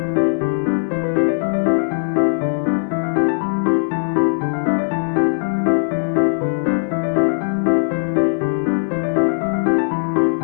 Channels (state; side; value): silent; right; digital silence